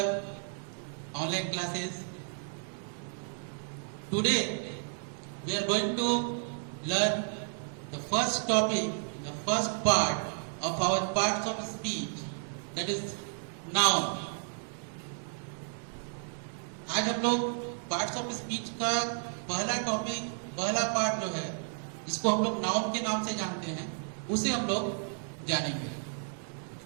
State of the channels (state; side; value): silent; left; 56 dB below the other